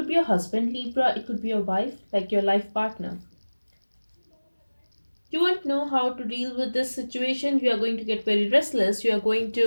be your husband, Libra, it could be your wife, like your life partner. You won't know how to deal with this situation. You are going to get very restless. You are going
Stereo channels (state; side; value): inverted; both; correlation -1.00